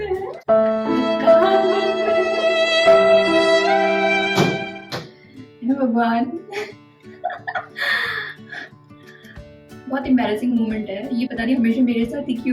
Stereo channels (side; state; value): both; identical; correlation 1.00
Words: हैं, भगवान। बहुत एम्बैरेसिंग मोमेंट है ये, पता नहीं हमेशा मेरे साथ ही